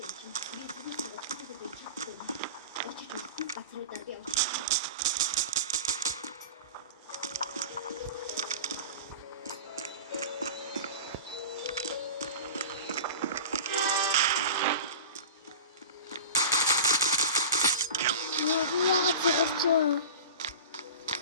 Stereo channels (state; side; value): inverted; both; correlation -0.33